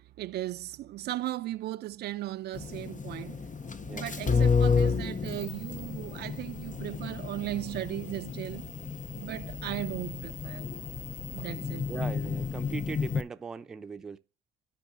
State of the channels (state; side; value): normal; both; correlation 0.64